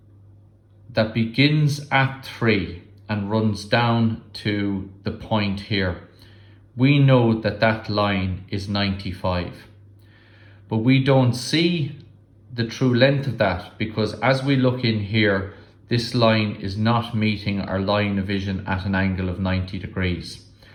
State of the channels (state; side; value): identical; both; correlation 1.00